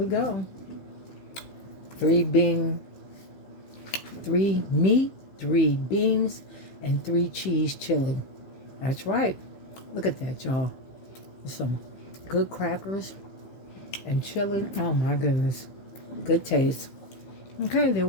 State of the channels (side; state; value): right; late; 15 ms